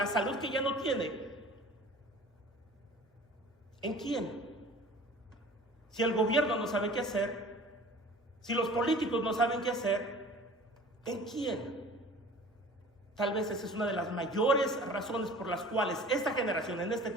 salud que ya no tiene? ¿En quién? Si el gobierno no sabe qué hacer, si los políticos no saben qué hacer, ¿en quién? Tal vez esa es una de las mayores razones por las cuales esta generación, en este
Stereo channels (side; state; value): both; normal; correlation 0.44